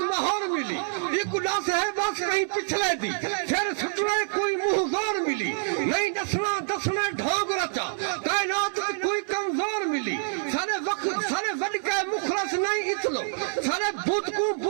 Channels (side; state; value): left; silent; 57 dB below the other